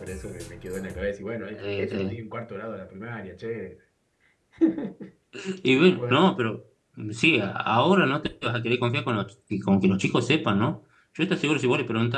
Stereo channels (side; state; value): both; identical; correlation 1.00